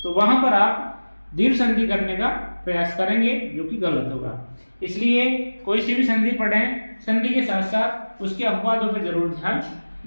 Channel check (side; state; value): both; inverted; correlation -1.00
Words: तो वहां पर आप दीर्घ संधि करने का प्रयास करेंगे, जो कि गलत होगा। इसलिए कोई सी भी संधि पढ़ें, संधि के साथ साथ उसके अपवादों पर जरूर ध्यान